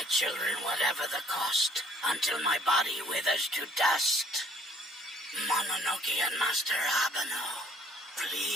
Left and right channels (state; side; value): normal; both; correlation 0.60